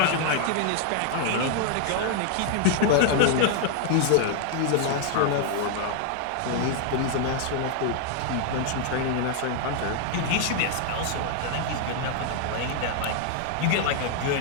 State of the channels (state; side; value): different; both; correlation 0.00